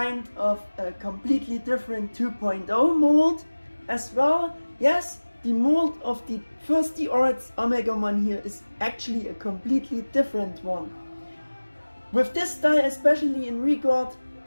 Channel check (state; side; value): inverted; both; correlation -1.00